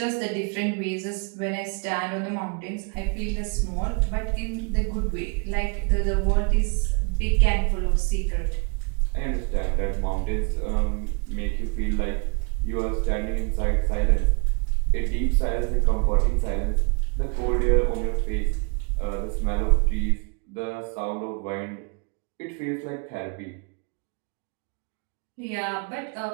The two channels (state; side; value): quieter; left; 35.6 dB